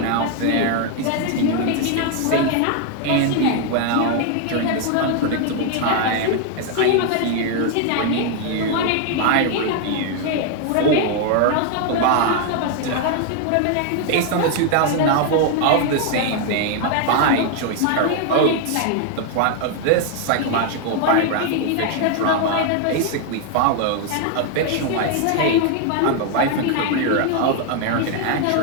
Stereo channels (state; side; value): different; both; correlation 0.00